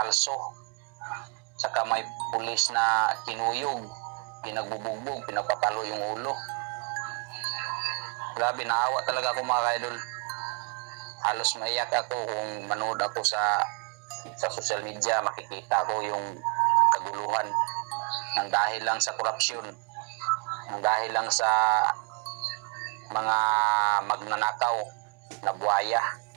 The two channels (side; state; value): left; quieter; 34.7 dB